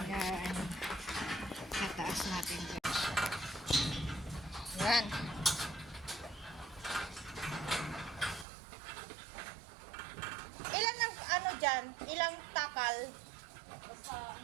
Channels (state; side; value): drops out; left; at 8.5 s